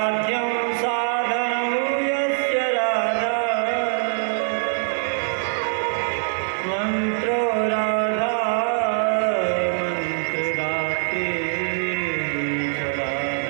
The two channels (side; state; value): left; silent; digital silence